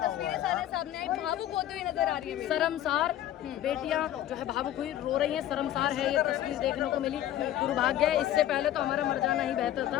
सामने आई, भावुक होते हुए नजर आ रही है। शर्मसार बेटियां जो है भावुक हुई रो रही हैं, शर्मसार है ये तस्वीर देखने को मिली। दुर्भाग्य है, इससे पहले तो हमारा मर जाना ही बेहतर था।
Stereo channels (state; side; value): quieter; right; 12.5 dB